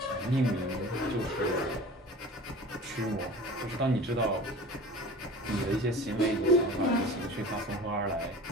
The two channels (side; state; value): both; normal; correlation 0.39